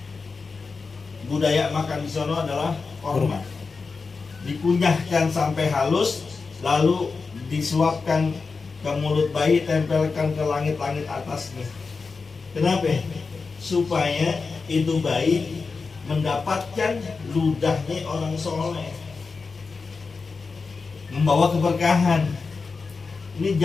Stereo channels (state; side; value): quieter; right; 4.6 dB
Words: budaya makan di sana adalah korma. Dikunyahkan sampai halus, lalu disuapkan ke mulut bayi, tempelkan ke langit-langit atasnya. Kenapa? Supaya itu bayi mendapatkan ludahnya orang soleh, membawa keberkahan. Ini